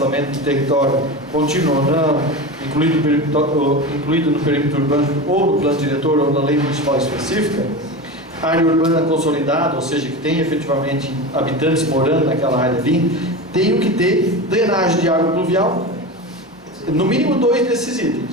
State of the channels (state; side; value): normal; both; correlation 0.25